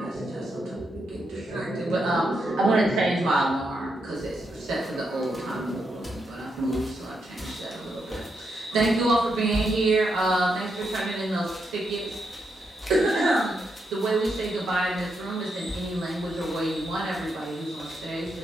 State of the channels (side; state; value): both; normal; correlation 0.82